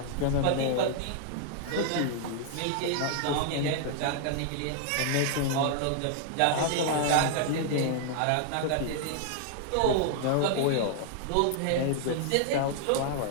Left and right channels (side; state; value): both; different; correlation 0.00